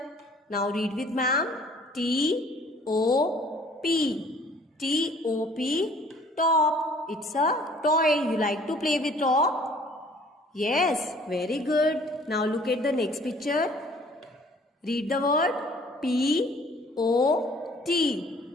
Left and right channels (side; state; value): both; normal; correlation 0.55